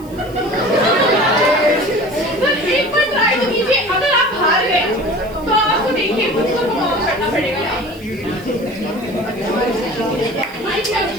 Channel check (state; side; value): noise; right; hiss, 24 dB below the sound